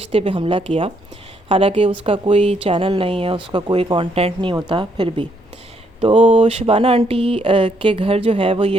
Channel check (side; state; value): both; normal; correlation 0.72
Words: पे हमला किया, हालांकि उसका कोई चैनल नहीं है, उसका कोई कंटेंट नहीं होता, फिर भी। तो शबाना आंटी के घर जो है वो ये